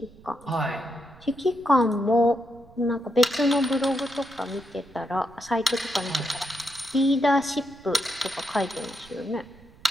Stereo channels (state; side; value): noise; right; rumble, 24 dB below the sound